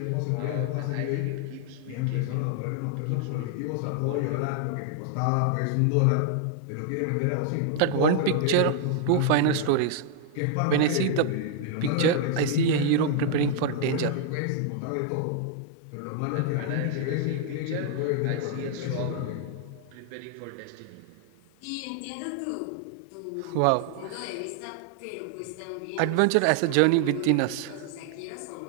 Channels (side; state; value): both; different; correlation 0.00